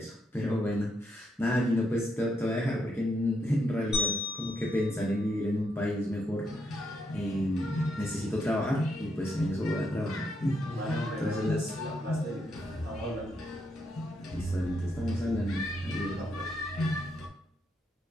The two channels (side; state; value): both; normal; correlation 0.78